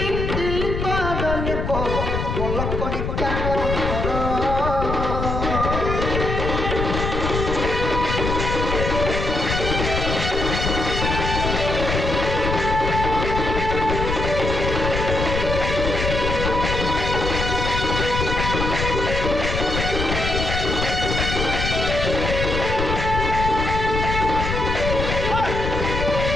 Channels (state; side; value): noise; left; rumble, 2 dB below the sound